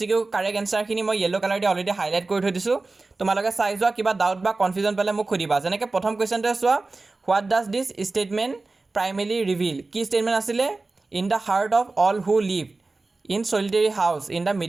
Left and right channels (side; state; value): left; quieter; 3.5 dB